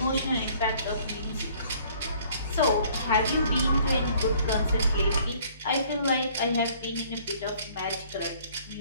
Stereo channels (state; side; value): inverted; both; correlation -0.57